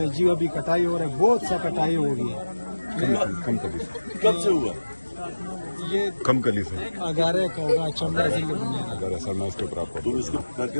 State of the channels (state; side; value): inverted; both; correlation -1.00